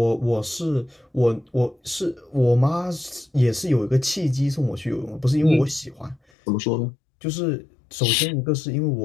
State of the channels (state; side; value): drops out; right; at 6.2 s